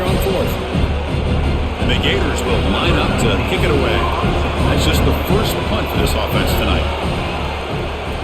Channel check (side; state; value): both; identical; correlation 1.00